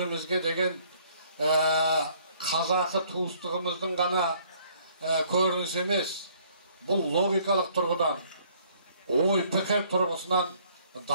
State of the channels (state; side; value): inverted; both; correlation -0.61